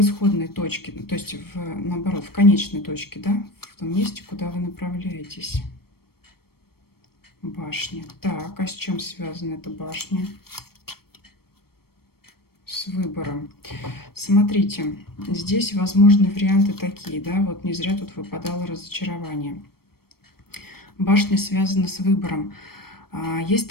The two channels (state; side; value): late; right; 0.94 ms